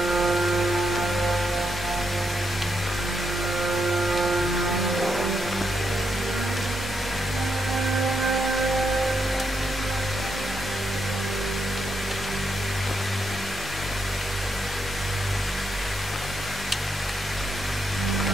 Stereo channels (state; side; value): normal; both; correlation 0.80